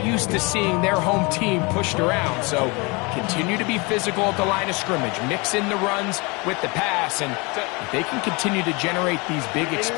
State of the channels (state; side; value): quieter; right; 27.7 dB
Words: used to seeing their home team pushed around. So continue to be physical at the line of scrimmage. Mix in the runs with the pass. And if they can continue to generate these big